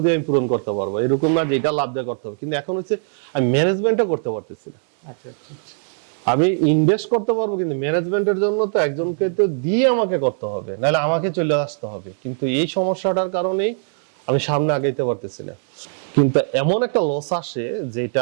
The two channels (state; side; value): silent; left; digital silence